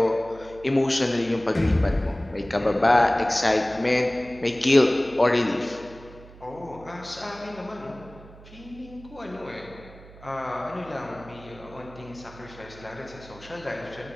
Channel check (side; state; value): right; noise; hum, 20 dB below the sound